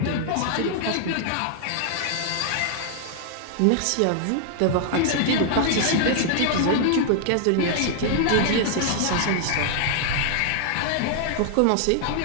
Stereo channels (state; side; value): different; both; correlation -0.01